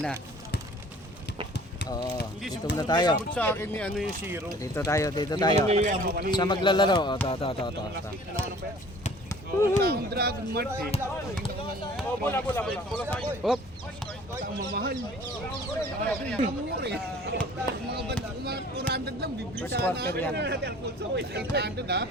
na. Oo, dito muna tayo. Sa akin ni ano yung zero. Dito tayo. Sa maglalaro. Oh, to. Dragon Mart eh. Bola. Hop. Ang mamahal. Mura eh. Mga banda, mga 400 lang, bibili First sana quarter yan. 800 ha.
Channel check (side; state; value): both; normal; correlation 0.50